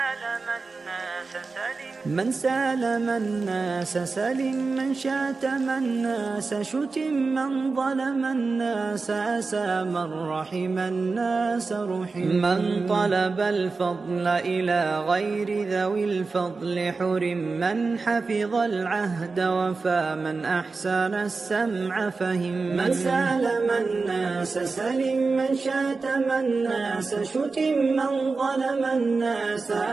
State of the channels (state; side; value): quieter; left; 4.1 dB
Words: سالم الناس سلم، من شاتم الناس شتم، من ظلم الناس أسى، من رحم الناس رحم. من طلب الفضل إلى غير ذوي الفضل حرم، من حفظ العهد وفى، من أحسن السمع فهم. من سالم الناس سلم، من شاتم الناس شتم، من ظلم الناس